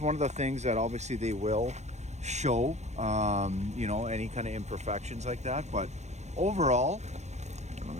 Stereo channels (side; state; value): left; late; 0.33 ms